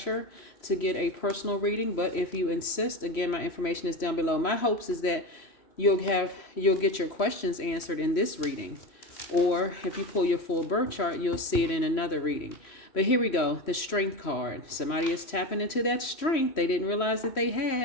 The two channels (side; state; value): right; late; 3.0 ms